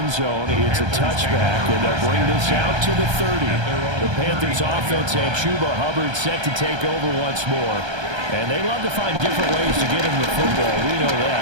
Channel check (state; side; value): late; left; 1.3 ms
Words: zone. It's a touchback, and they'll bring this out to the 30. The Panthers offense and Chuba Hubbard set to take over once more. And they love to find different ways to get him the football. We know